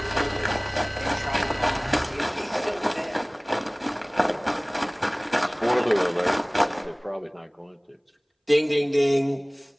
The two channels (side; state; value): both; identical; correlation 1.00